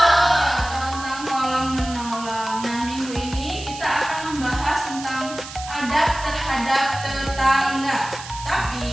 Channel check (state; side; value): noise; right; hiss, 13 dB below the sound